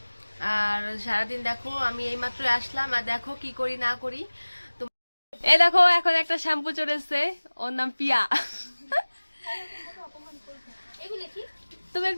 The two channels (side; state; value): both; inverted; correlation -1.00